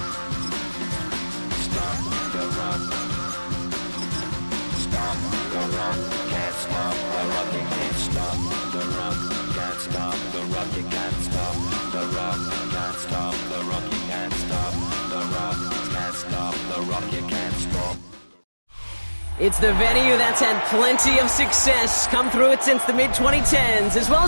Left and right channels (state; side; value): inverted; both; correlation -1.00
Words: It's the venue that's had plenty of success, come through it since the mid-2010s, as well